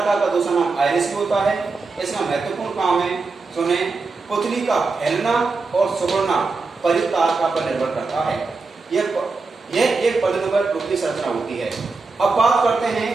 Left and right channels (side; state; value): left; quieter; 4.0 dB